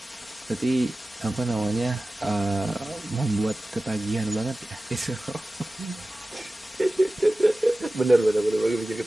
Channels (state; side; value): normal; both; correlation 0.96